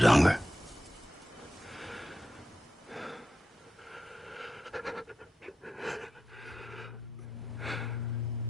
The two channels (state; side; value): normal; both; correlation 0.89